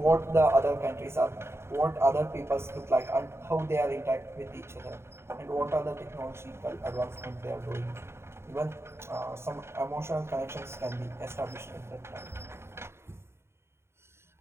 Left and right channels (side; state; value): left; late; 0.12 ms